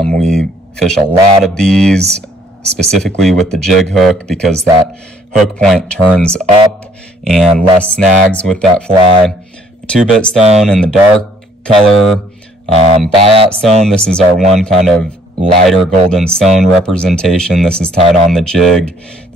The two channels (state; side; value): normal; both; correlation 0.63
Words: fish a lot of these specifically with the jig hook because that hook point turns up and less snags with that fly. 2-bit stone in the dark color, buyout stone. This is our one kind of lighter golden stone representation. This is tied on the jig.